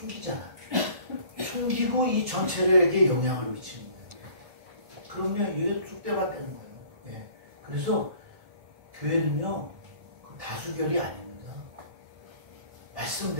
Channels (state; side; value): late; left; 1.4 ms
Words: 숨기고 이 전체에게 영향을 미치는 거예요. 그러면 이게 쑥대밭 되는 거예요. 예. 그래서 교회는요 그 다수결이 아닙니다.